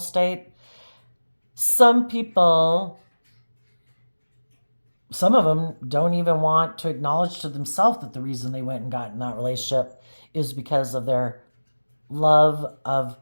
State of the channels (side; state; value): both; inverted; correlation -1.00